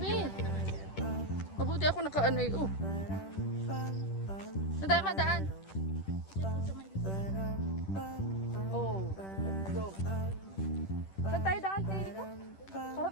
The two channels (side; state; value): right; late; 10 ms